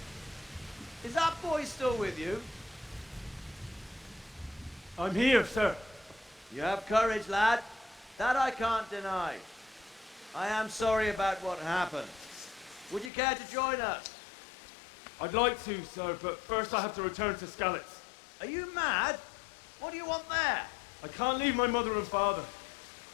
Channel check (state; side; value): drops out; right; at 13.1 s